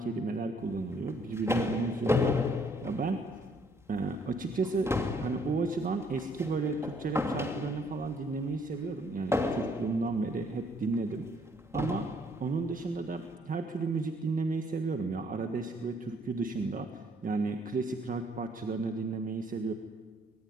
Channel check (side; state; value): both; normal; correlation 0.65